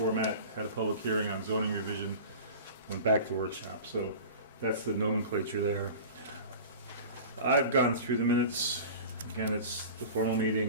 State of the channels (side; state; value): both; inverted; correlation -0.37